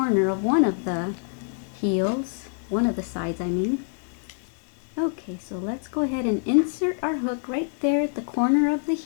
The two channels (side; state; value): right; silent; 61 dB below the other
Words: of one of the heels, one of the sides I mean. Okay, so let's go ahead and insert our hook right there at the corner of the